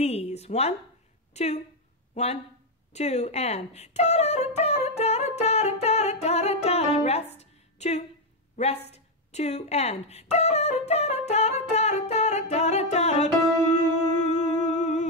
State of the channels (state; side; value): normal; both; correlation 0.03